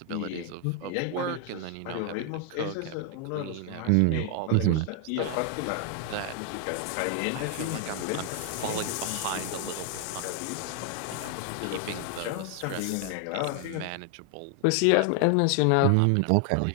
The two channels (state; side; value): different; both; correlation 0.00